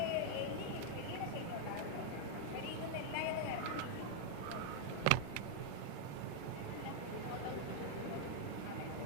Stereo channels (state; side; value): different; both; correlation 0.00